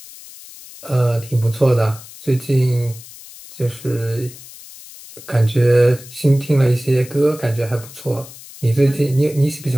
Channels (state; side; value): noise; left; hiss, 18 dB below the sound